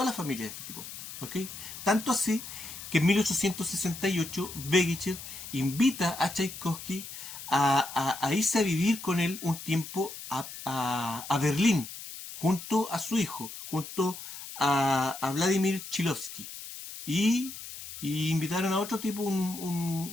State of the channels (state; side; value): noise; left; hiss, 11 dB below the sound